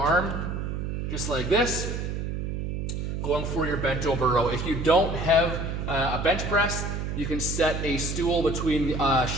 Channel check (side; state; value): right; noise; hum, 3 dB below the sound